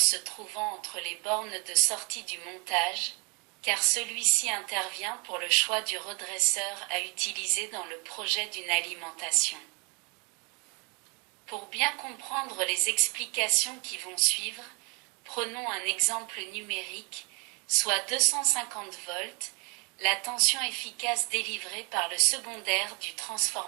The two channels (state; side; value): quieter; left; 32.1 dB